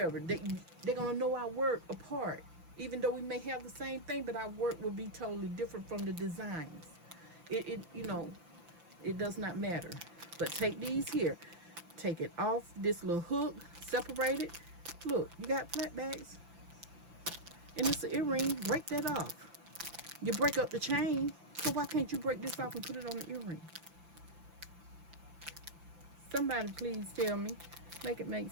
They're going to know our work apart. Even though we may have the same thing, but our work will be totally different from the designs. You know, it does not matter. But take these here. Take it off this little hook. Separate it. Look, you got flat bags. And it's an earring, break that off. You break up the chain, so why can't you break this off and put it on the earring? Somebody please tell me. Make it make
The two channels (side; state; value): left; late; 5.9 ms